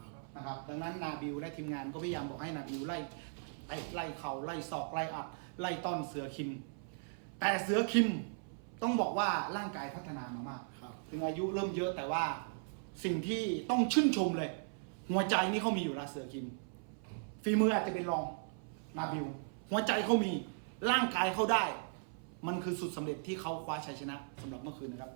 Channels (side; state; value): left; silent; 53 dB below the other